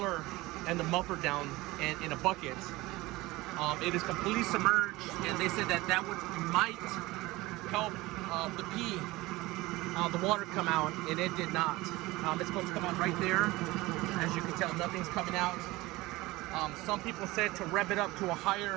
and the muffler down in a bucket. It is completely submerged, and they said that might help the water come out, and it did not. It's supposed to come out right there. As you can tell, nothing's coming out. Some people said to rev it up to a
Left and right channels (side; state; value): left; quieter; 20.2 dB